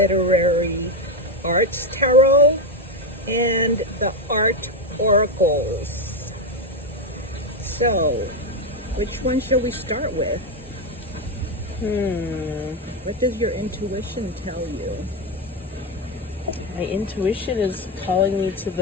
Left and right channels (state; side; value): normal; both; correlation 0.09